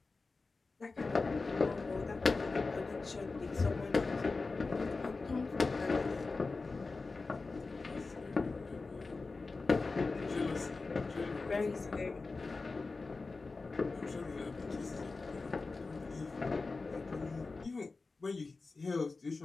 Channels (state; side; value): quieter; right; 3.9 dB